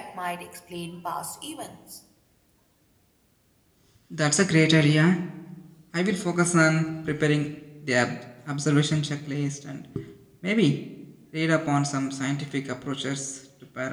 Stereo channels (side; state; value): both; identical; correlation 1.00